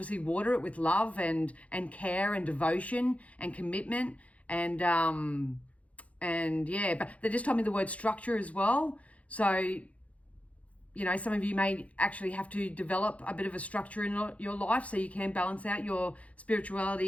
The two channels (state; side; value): late; right; 0.066 ms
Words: water it with love and care and devotion and commitment and yeah, but they just told me the word structure as well. So, you know, some of you may actually have to develop a bit of a structure in your life so you can balance out your